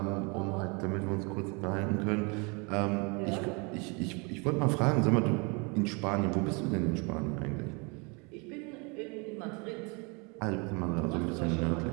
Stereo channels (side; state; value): left; quieter; 31.0 dB